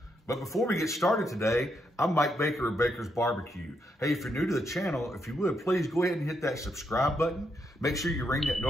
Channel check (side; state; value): both; normal; correlation 0.79